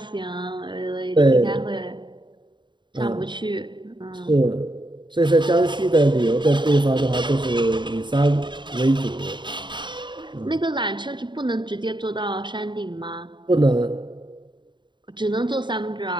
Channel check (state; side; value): late; left; 0.23 ms